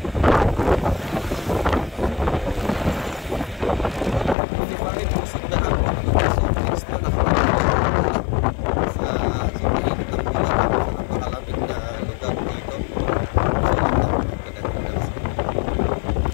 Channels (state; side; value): drops out; right; at 4.4 s